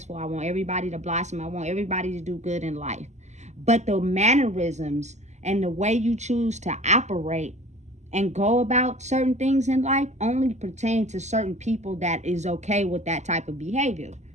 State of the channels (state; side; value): late; left; 0.33 ms